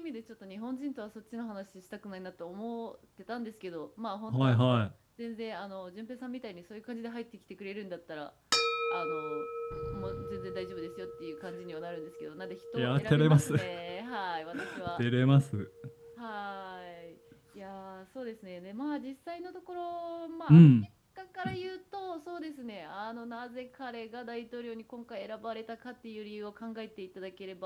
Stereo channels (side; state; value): both; identical; correlation 1.00